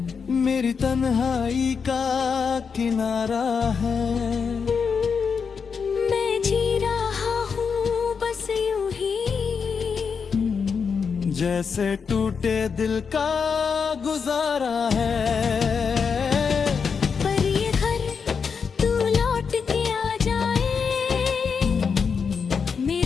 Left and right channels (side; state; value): right; quieter; 5.9 dB